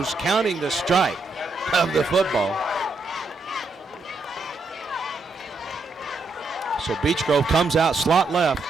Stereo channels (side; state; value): left; quieter; 3.4 dB